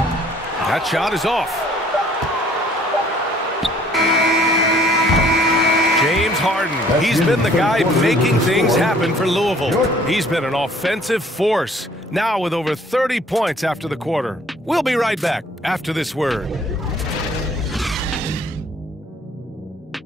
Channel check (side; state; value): both; normal; correlation 0.58